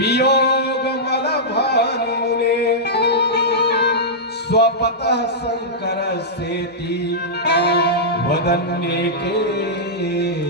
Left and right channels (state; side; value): normal; both; correlation -0.11